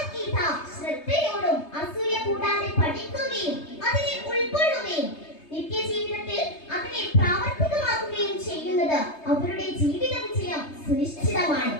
ശ്രദ്ധയോടും അസൂയ കൂടാതെ പഠിക്കുകയും അതിനെ ഉൾക്കൊള്ളുകയും നിത്യജീവിതത്തിൽ അതിനെ പ്രാവർത്തികമാക്കുകയും ചെയ്യുന്നത് അവരുടെ ജീവിത വിജയം സുനിശ്ചിതമാണ്.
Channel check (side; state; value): right; late; 3.2 ms